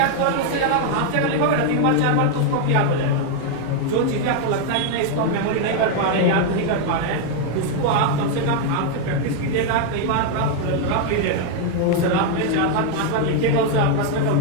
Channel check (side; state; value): both; different; correlation 0.00